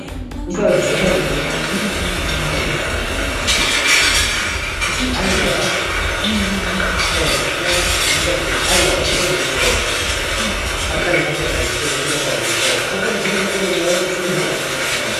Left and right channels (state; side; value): identical; both; correlation 1.00